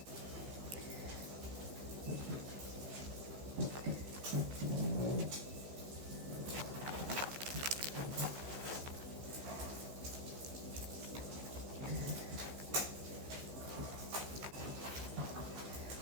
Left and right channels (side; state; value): left; late; 15 ms